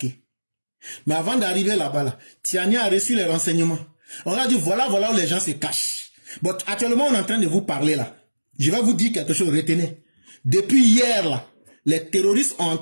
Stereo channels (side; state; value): both; inverted; correlation -1.00